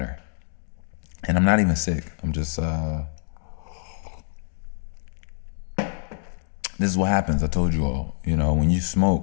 And I'm not even sick. I'm just, this is what happens. I told you all, when you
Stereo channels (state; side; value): silent; right; digital silence